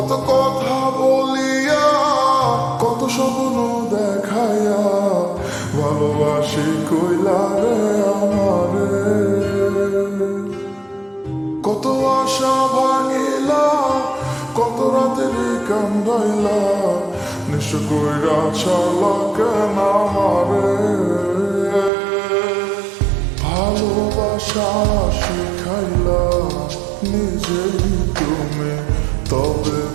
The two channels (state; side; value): drops out; left; at 21.9 s